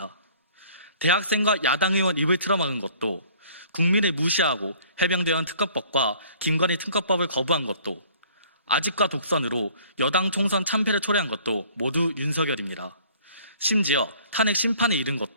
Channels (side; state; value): both; inverted; correlation -0.54